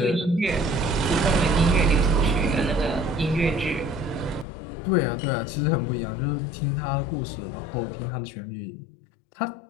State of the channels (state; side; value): drops out; right; at 4.5 s